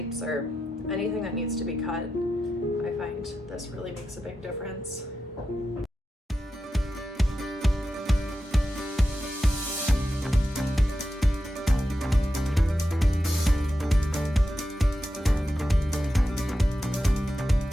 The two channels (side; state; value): both; normal; correlation 0.89